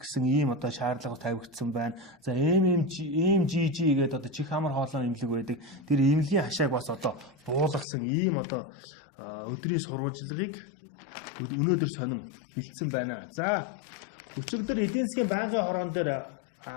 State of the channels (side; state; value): right; drops out; at 7.9 s